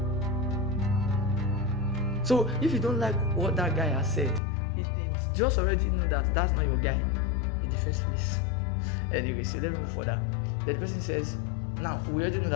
So if you don't like what that guy has said, it just already know that that's not your guy in the first place. Anyway, so let me move further. The person says, now we already know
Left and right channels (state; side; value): drops out; right; at 4.4 s